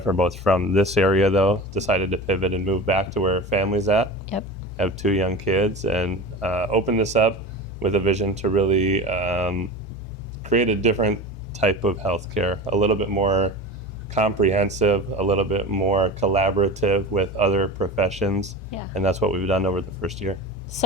are both from this area, though. Decided to pivot and move back to where family's at. Yep. Have 2 young kids, and open this up with a vision to really create a different type of healthcare, a little bit more comprehensive, a little bit more collaborative with other professions. Yeah. And that's what we've done over the first year.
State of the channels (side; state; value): both; normal; correlation 0.29